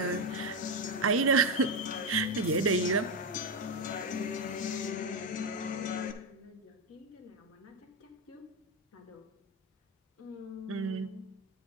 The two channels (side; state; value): both; normal; correlation 0.08